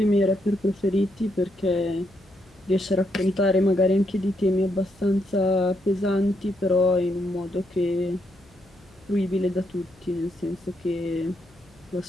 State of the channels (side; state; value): left; noise; hum, 29 dB below the sound